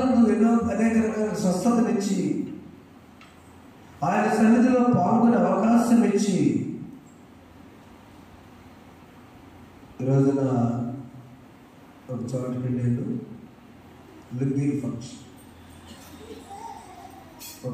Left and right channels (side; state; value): both; identical; correlation 1.00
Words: ఎన్నో అనేక రకాల స్వస్థతనిచ్చి ఆయన సన్నిధిలో పాల్గొనే అవకాశం ఇచ్చి ఈరోజున ఒక చోటుకి వెళ్ళాడు. లింగిల్ ఫంక్షన్.